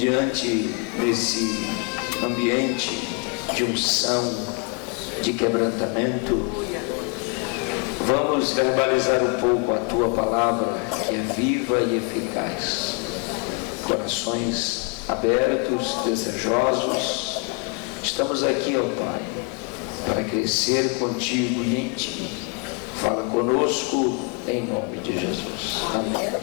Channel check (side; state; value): right; quieter; 33.7 dB